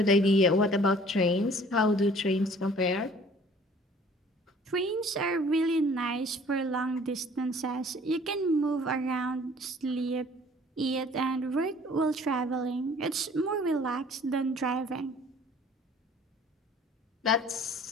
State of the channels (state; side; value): normal; both; correlation 0.53